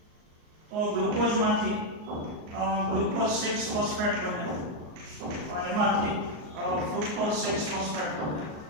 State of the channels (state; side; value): late; left; 38 ms